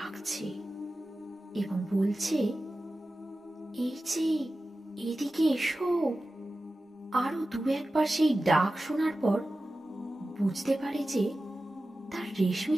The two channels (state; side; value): normal; both; correlation 0.94